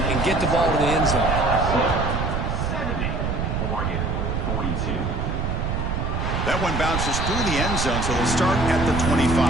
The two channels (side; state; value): right; noise; rumble, 1 dB below the sound